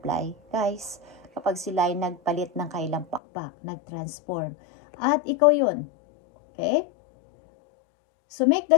Guys, kapag sila ay nagpalit ng kailang pakpak, nag-transform. At ikaw yun. Okay? So make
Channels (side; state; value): right; drops out; at 3.2 s